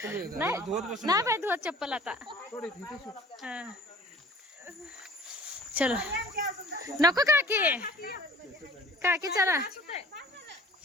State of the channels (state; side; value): normal; both; correlation 0.48